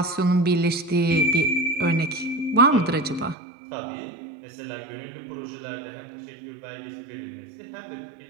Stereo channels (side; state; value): left; drops out; at 3.4 s